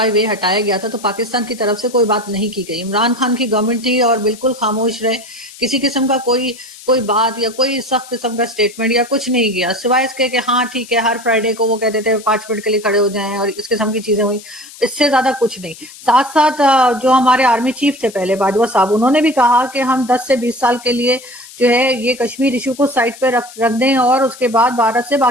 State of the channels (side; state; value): left; noise; hiss, 18 dB below the sound